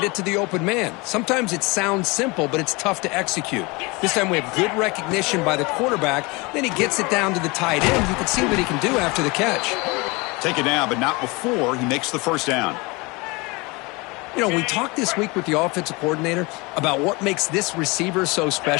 it to the open man. Sometimes it sounds simple, but it's tough to execute. This time we have good recognition by the quarterback. Then he gets it down to the tight end. You can see what he can do after the catch. Take it down, but not before he makes the first down. You know, we talked this week with the offensive coordinator about what makes this receiver so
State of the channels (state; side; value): quieter; right; 25.8 dB